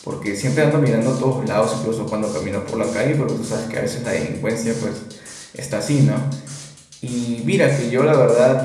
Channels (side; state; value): both; identical; correlation 1.00